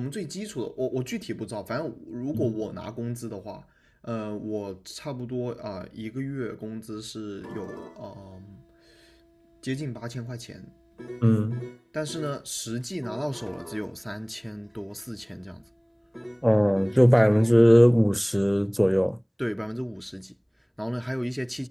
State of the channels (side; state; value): both; identical; correlation 1.00